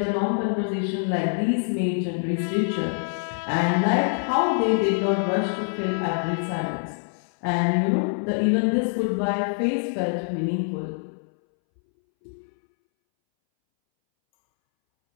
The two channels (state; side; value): silent; right; 62 dB below the other